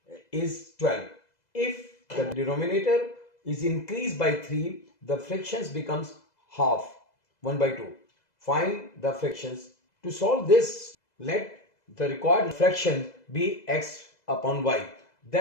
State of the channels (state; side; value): late; right; 2.0 ms